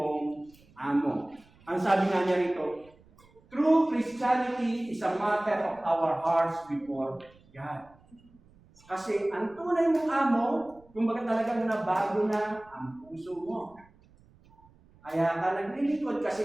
amo. Ang sabi nga niya rito, true Christianity is a matter of our hearts before God. Kasi ang tunay mong amo, kumbaga talagang nabago na ang puso mo. Kaya ka naglilingkod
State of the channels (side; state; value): right; noise; rumble, 28 dB below the sound